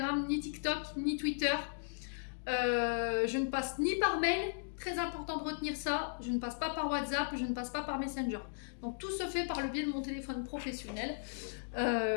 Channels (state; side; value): silent; right; digital silence